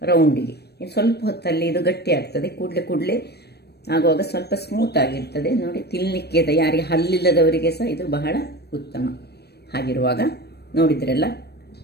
ರೌಂಡಿಗೆ. ಇನ್ನು ಸ್ವಲ್ಪ ಹೊತ್ತಲ್ಲಿ ಇದು ಗಟ್ಟಿ ಆಗ್ತದೆ, ಕೂಡಲೇ ಆಗುವಾಗ ಸ್ವಲ್ಪ ಸ್ಮೂತ್ ಆಗಿರ್ತದೆ. ನೋಡಿ ತಿನ್ನಲಿಕ್ಕೆ ಯಾರಿಗೆ ಹಲ್ಲಿಲ್ಲದವರಿಗೆ ಸಹ ಇದು ಬಹಳ ಉತ್ತಮ. ಹಾಗಿರುವಾಗ ನೋಡಿದ್ರಲ್ಲ,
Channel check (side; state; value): right; late; 0.47 ms